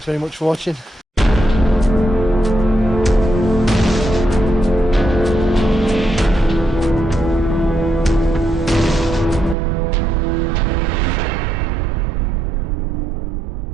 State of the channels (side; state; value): left; drops out; at 9.6 s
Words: very much for watching.